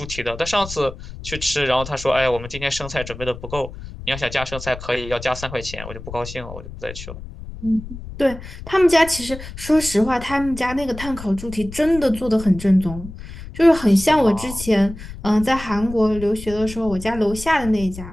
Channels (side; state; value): left; noise; rumble, 12 dB below the sound